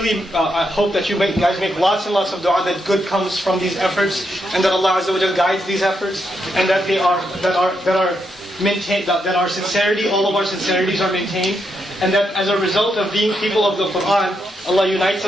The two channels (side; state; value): both; normal; correlation 0.81